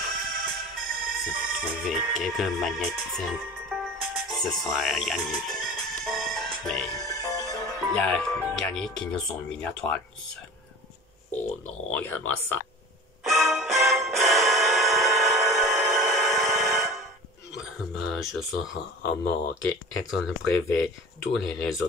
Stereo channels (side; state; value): both; normal; correlation 0.38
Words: Si on trouver quelques magnétines, ce sera gagné. Mais il y a gagné qui nous sont mis à toi seul. Oh non, regarde-moi ça. Je serai en manque être le privé. Tous les